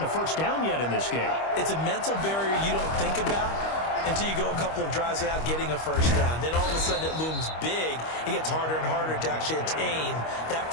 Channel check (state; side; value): late; right; 25 ms